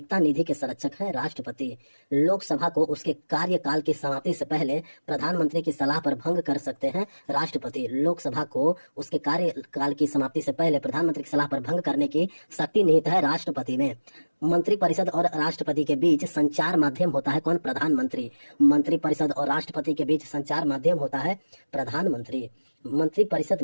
निधि के संरक्षक है राष्ट्रपति। लोकसभा को उसके कार्यकाल की समाप्ति से पहले प्रधानमंत्री की सलाह पर भंग कर सकते हैं राष्ट्रपति। लोकसभा को उसके कार्यकाल की समाप्ति से पहले प्रधानमंत्री की सलाह पर भंग करने की शक्ति निहित है राष्ट्रपति में। मंत्रिपरिषद और राष्ट्रपति के बीच संचार माध्यम होता है कौन? प्रधानमंत्री। मंत्रिपरिषद और राष्ट्रपति के बीच संचार माध्यम होता है प्रधानमंत्री। मंत्रिपरिषद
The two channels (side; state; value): both; inverted; correlation -1.00